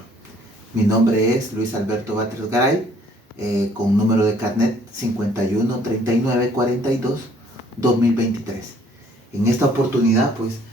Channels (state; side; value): normal; both; correlation 0.60